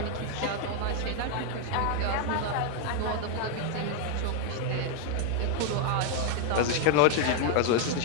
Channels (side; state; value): both; different; correlation 0.00